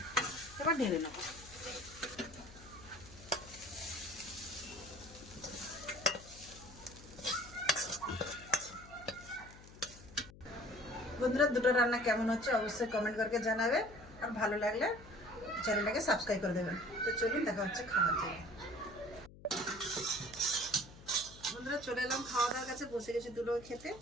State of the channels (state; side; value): noise; left; hum, 19 dB below the sound